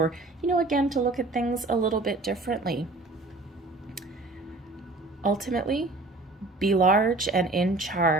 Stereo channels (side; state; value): left; quieter; 3.1 dB